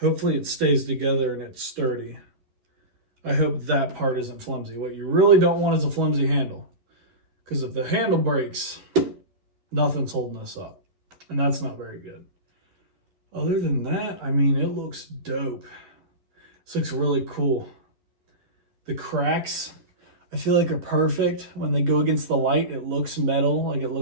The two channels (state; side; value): late; left; 11 ms